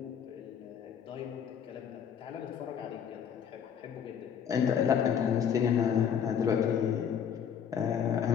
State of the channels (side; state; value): right; quieter; 8.0 dB